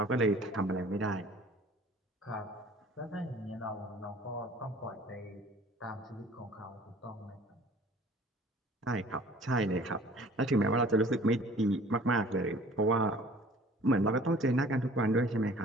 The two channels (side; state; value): both; normal; correlation 0.50